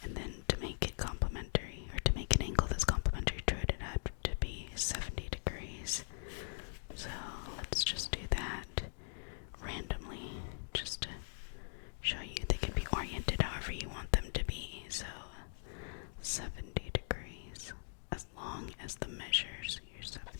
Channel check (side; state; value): right; silent; digital silence